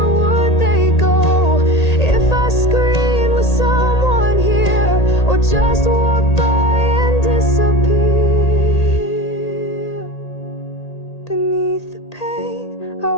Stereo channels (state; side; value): late; right; 1.8 ms